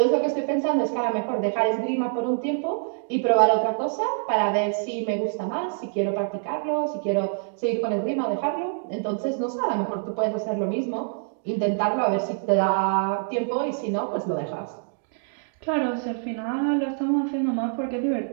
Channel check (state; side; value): silent; left; digital silence